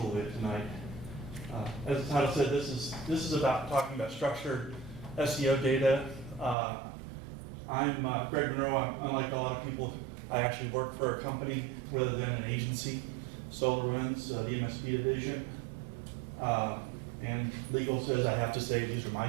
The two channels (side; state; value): left; drops out; at 6.6 s